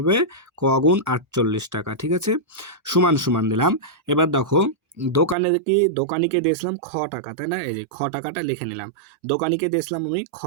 ক গুণ 48 টাকা, ঠিক আছে? সমান সমান দিলাম। এবার দেখো দোকানিকে দিয়েছিলাম খ টাকা, তাই না? এই যে খ টাকাটা লিখে নিলাম, দোকানিকে দিয়েছিলাম আমি খ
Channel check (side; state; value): left; drops out; at 5.4 s